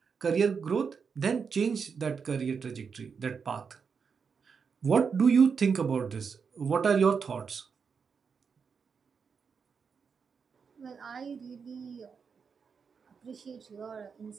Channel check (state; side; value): quieter; left; 5.9 dB